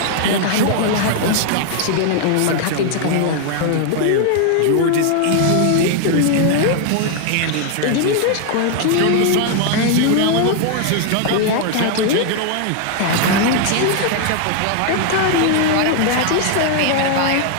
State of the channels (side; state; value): both; different; correlation 0.00